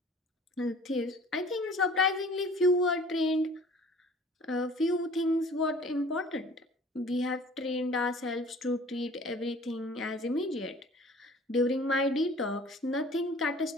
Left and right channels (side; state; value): both; normal; correlation 0.49